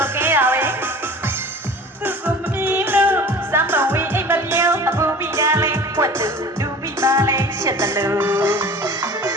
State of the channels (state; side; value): normal; both; correlation 0.41